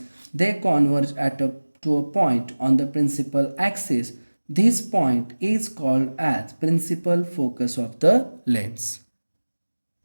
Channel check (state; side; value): inverted; both; correlation -1.00